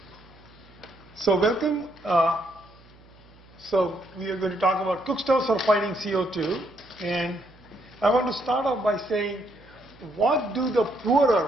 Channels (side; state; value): right; noise; hum, 25 dB below the sound